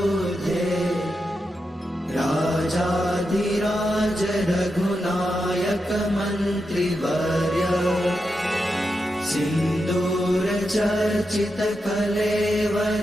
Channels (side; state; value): both; normal; correlation 0.87